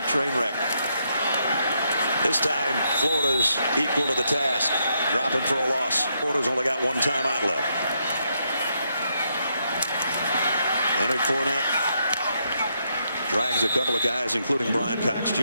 train wreck. This time, Florida's equal to the task, dropping for a loss. Florida's only got one timeout left. Leonard Fournette drags a couple of guys, including Brian Cox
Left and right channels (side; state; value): both; inverted; correlation -0.78